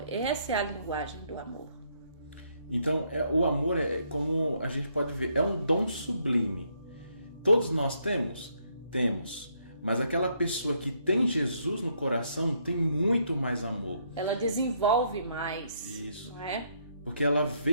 essa é a linguagem do amor. Então, o amor como a gente pode ver, é um dom sublime. Todos nós temos? Temos. Mas aquela pessoa que tem Jesus no coração tem muito mais amor. Ela desenvolve mais. Isso. Não é? Porque ela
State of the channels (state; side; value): inverted; both; correlation -0.72